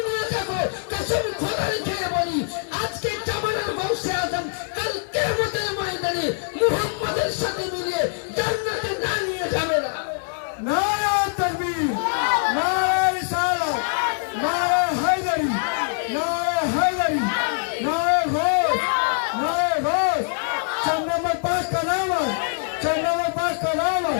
নিয়ে থাকো, কসম খোদার খেয়ে বলি আজকে জামানের গৌসে আজম কাল কিয়ামতের ময়দানে মুহাম্মাদের সাথে মিলিয়ে জান্নাতে না নিয়ে যাবে না। नारा तकबीर, नारा रिसालत, नारा हैदरी, नारा हैदरी, नारा घोष, नारा घोष। 4 नंबर पास का नाम है, 4 नंबर पास का नाम है,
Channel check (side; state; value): right; silent; 58 dB below the other